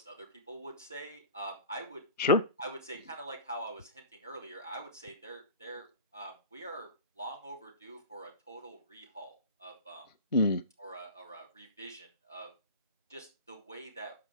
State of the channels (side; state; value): both; inverted; correlation -0.31